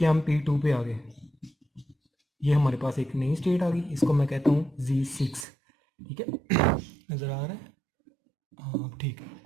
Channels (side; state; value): left; drops out; at 5.5 s